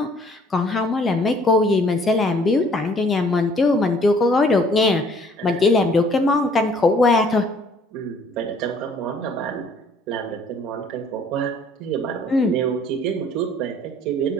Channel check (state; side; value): normal; both; correlation 0.58